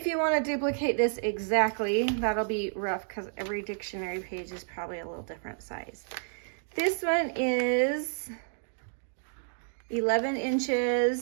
you want to duplicate this exactly, that'll be rough because every dictionary page is probably a little different size. This one is 11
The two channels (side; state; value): left; silent; digital silence